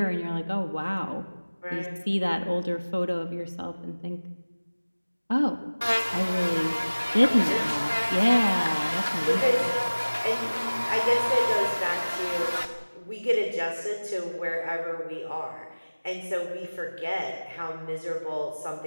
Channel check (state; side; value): inverted; both; correlation -1.00